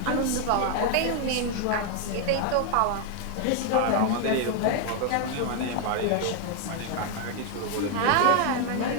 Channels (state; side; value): different; both; correlation 0.01